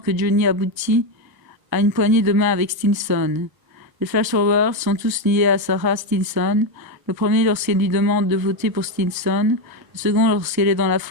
Johnny aboutit à une poignée de main avec Stinson. Les flash-forwards sont tous liés à Sarah Stinson, le premier lorsqu'elle lui demande de voter pour Stinson, le second lorsqu'elle est dans la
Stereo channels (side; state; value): left; late; 1.3 ms